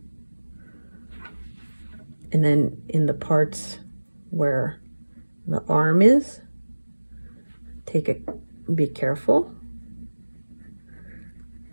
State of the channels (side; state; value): both; inverted; correlation -1.00